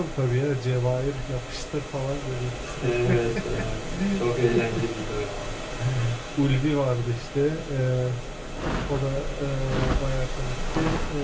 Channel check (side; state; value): both; identical; correlation 1.00